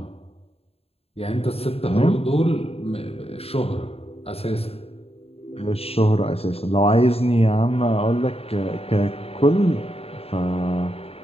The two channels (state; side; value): late; right; 0.29 ms